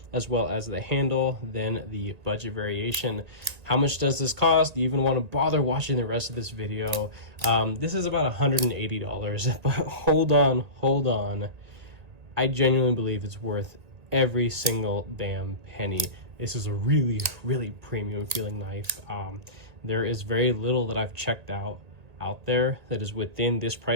as well as the handle, than the budget variation. How much does this cost? Do you even want to bother watching the rest of this video? This is about $180, but hold on. I genuinely believe it's worth every single damn penny. This is a really premium feeling knife. There is very little that I've checked out there that is within this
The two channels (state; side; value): late; left; 1.9 ms